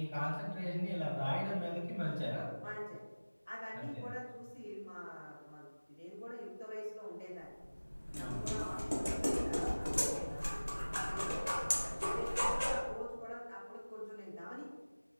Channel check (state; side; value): inverted; both; correlation -1.00